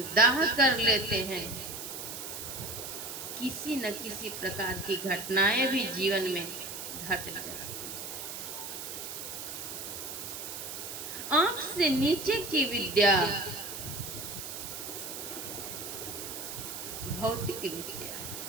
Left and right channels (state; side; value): noise; right; hiss, 7 dB below the sound